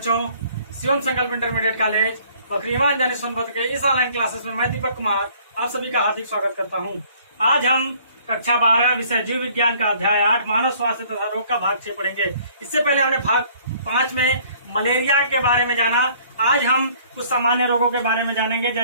शिवम संकल्प इंटरमीडिएट कॉलेज बकरीवान जानी सोनभद्र के इस ऑनलाइन क्लासेस में मैं दीपक कुमार आप सभी का हार्दिक स्वागत करता हूं। आज हम कक्षा 12 विषय जीव विज्ञान का अध्याय 8 मानव स्वास्थ्य तथा रोग का भाग 6 पढ़ेंगे। इससे पहले हमने भाग 5 में मलेरिया के बारे में जाना। आज हम कुछ सामान्य रोगों के बारे में जानेंगे,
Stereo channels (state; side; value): inverted; both; correlation -0.58